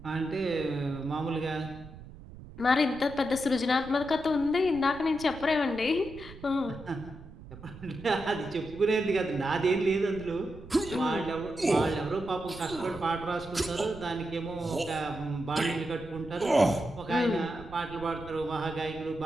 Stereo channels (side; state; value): right; noise; rumble, 16 dB below the sound